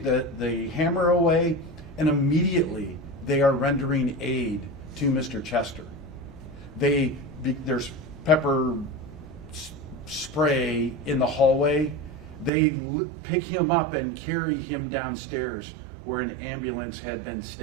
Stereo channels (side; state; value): left; drops out; at 12.5 s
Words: the hammer away, and immediately they are rendering aid to Mr. Chester. There's pepper spray in the hallway. They pick him up and carry him downstairs where an ambulance had been